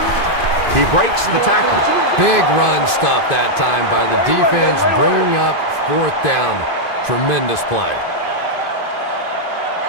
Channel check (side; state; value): right; late; 2.6 ms